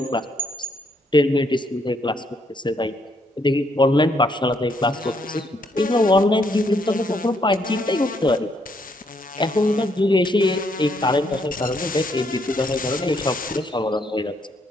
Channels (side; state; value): both; normal; correlation 0.72